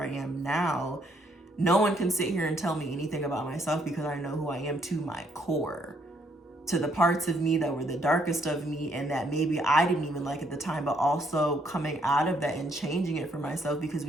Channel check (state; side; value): normal; both; correlation 0.70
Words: am now. No one can sit here and tell me anything about myself, because I know who I am to my core, to the parts of me that were the darkest of me and that maybe I didn't even like at the time, but also coming out of that and changing it for myself, because